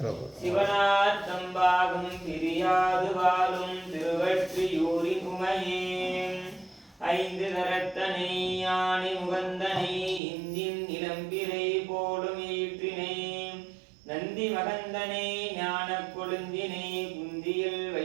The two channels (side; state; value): left; drops out; at 10.2 s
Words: சிவனார்த்தம் பாகம் பிரியாது வாழும் திருவற்றியூரின் உமையேன் ஐந்து கரத்தனை யானை முகந்தனை இந்தின் இளம்பிரை போலும் ஈற்றினை நந்தி மகந்தனை ஞான கொழுந்தினை குந்தியில்